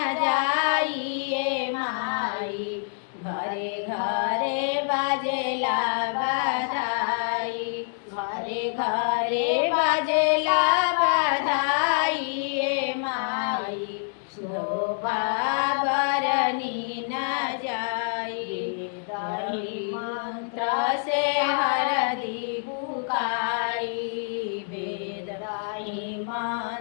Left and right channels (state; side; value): silent; right; digital silence